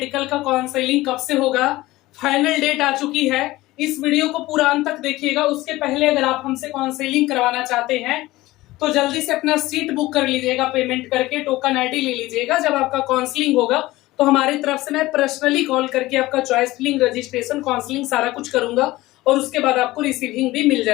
का काउंसलिंग कब से होगा, फाइनल डेट आ चुकी है। इस वीडियो को पूरा अंत तक देखिएगा। उसके पहले अगर आप हमसे काउंसलिंग करवाना चाहते हैं तो जल्दी से अपना सीट बुक कर लीजिएगा, पेमेंट करके टोकन आईडी ले लीजिएगा। जब आपका काउंसलिंग होगा तो हमारी तरफ से मैं पर्सनली कॉल करके आपका चॉइस फिलिंग, रजिस्ट्रेशन, काउंसलिंग सारा कुछ करूंगा और उसके बाद आपको रिसीविंग भी मिल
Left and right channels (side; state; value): right; quieter; 18.3 dB